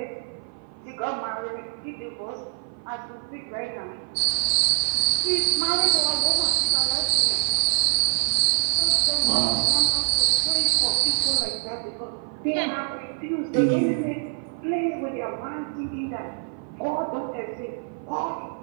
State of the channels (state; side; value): silent; left; 57 dB below the other